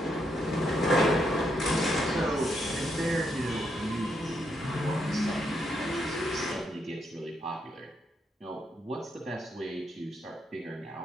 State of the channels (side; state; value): both; normal; correlation 0.78